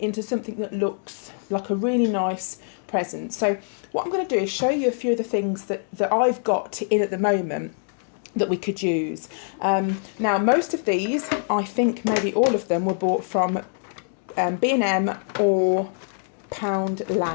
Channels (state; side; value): silent; right; digital silence